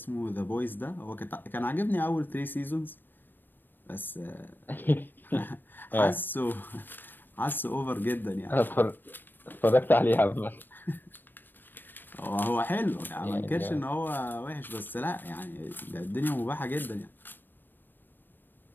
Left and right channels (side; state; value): right; late; 0.093 ms